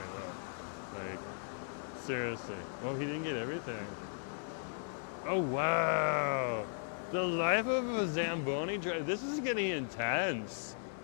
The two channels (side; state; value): right; silent; 53 dB below the other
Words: though. Like, seriously. Oh, he didn't get everything. Oh wow. The life of a Zamboni driver. This is getting intense.